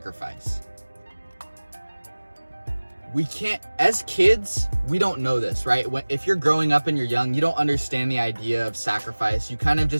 We can't, as kids, we don't know this, right? If you're growing up and you're young, you don't understand the idea of sacrifice. You kind of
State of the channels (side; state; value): both; inverted; correlation -1.00